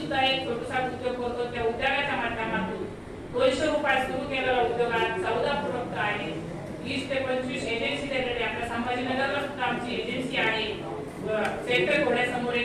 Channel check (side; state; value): both; identical; correlation 1.00